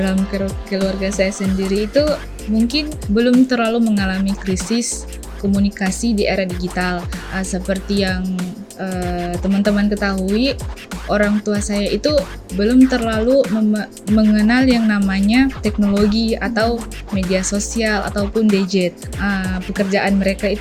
keluarga saya sendiri itu mungkin belum terlalu mengalami krisis komunikasi di era digital. Seperti yang teman-teman ketahui, orang tua saya itu belum terlalu mengenal yang namanya teknologi atau media sosial ataupun gadget. Pekerjaan mereka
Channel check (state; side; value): identical; both; correlation 1.00